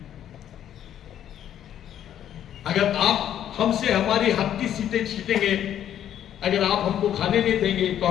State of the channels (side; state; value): right; quieter; 10.5 dB